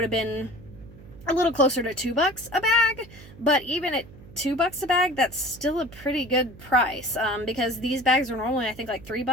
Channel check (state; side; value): noise; right; hum, 20 dB below the sound